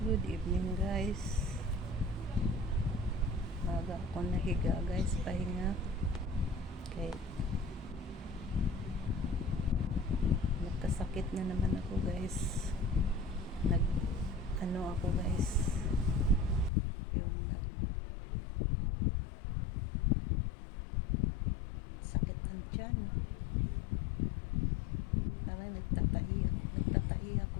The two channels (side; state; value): right; drops out; at 16.7 s